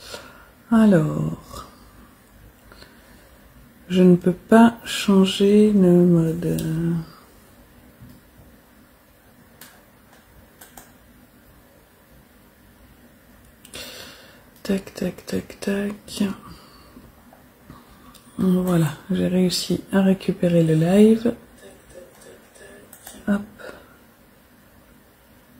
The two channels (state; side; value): identical; both; correlation 1.00